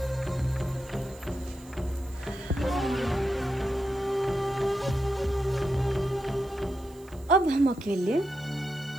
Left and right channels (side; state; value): right; noise; hiss, 26 dB below the sound